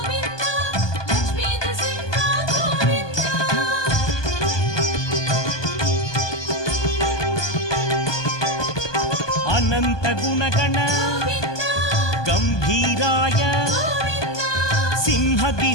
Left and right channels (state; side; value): late; right; 1.2 ms